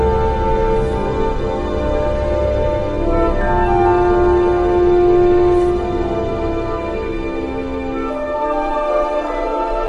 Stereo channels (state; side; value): identical; both; correlation 1.00